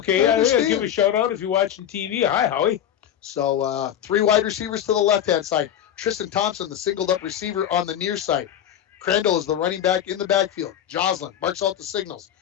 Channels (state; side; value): quieter; right; 10.2 dB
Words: I'll give a shout out if you're watching TV. Hi, Howie." So 3 wide receivers to the left-hand side. Tristan Thompson, the singled-up receiver on the near side. Crandall is the running back in the backfield. Joslin marks out the signals.